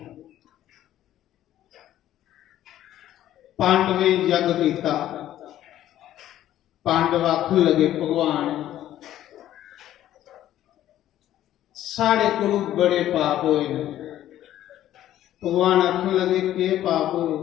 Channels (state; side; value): quieter; right; 12.7 dB